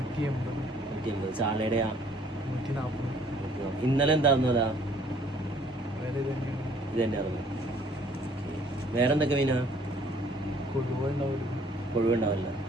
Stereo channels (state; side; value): normal; both; correlation 0.59